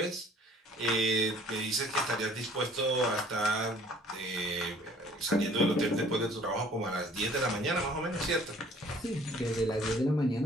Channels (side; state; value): both; normal; correlation 0.55